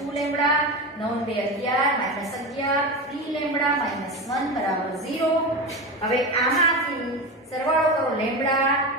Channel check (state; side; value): normal; both; correlation 0.22